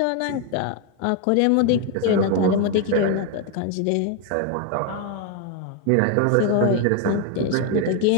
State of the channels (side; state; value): both; different; correlation 0.01